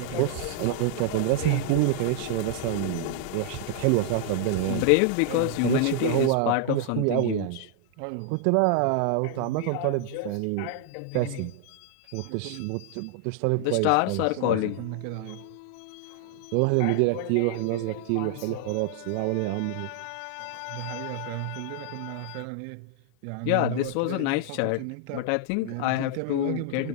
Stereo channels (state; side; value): different; both; correlation 0.00